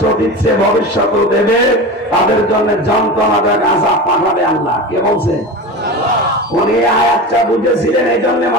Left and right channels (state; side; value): normal; both; correlation 0.27